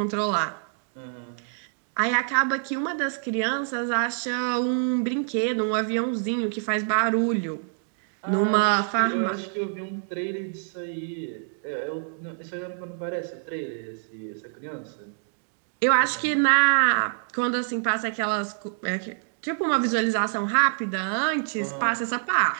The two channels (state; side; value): silent; left; digital silence